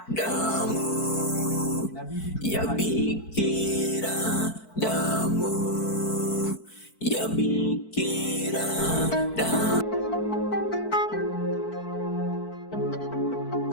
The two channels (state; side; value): late; right; 4.5 ms